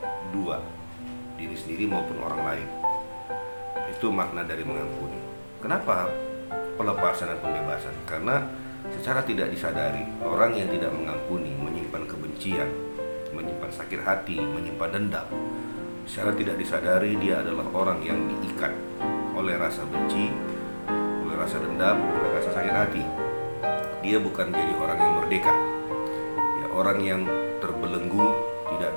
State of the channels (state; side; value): inverted; both; correlation -1.00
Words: dua, diri sendiri maupun orang lain. Itu makna dari mengampuni. Kenapa pelepasan dan pembebasan? Karena secara tidak disadari, orang yang tidak mengampuni menyimpan kebencian, menyimpan sakit hati, menyimpan dendam. Secara tidak disadari dia adalah orang yang diikat oleh rasa benci, oleh rasa dendam, oleh rasa sakit hati. Dia bukan jadi orang yang merdeka, ya, orang yang terbelenggu, tidak